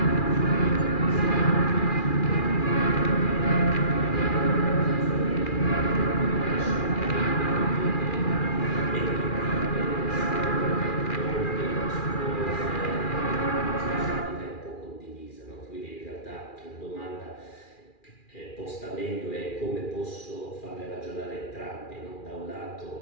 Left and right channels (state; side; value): late; right; 2.4 ms